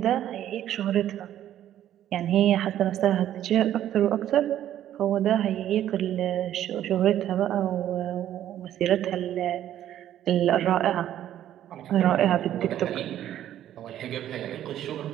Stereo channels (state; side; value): quieter; left; 11.7 dB